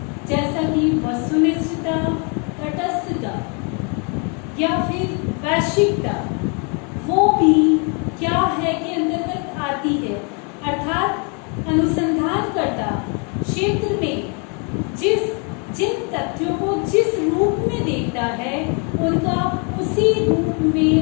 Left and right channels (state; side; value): quieter; right; 35.8 dB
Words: जैसा कि वस्तुनिष्ठता, तटस्थता या फिर वैश्विकता, वो भी क्या है के अंतर्गत आती है। अर्थात अनुसंधानकर्ता क्षेत्र में जिन तथ्यों को जिस रूप में देखता है उनका उसी रूप